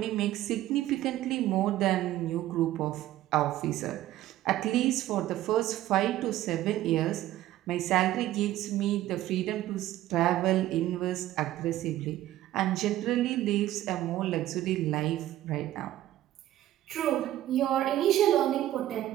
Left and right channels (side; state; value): left; quieter; 14.1 dB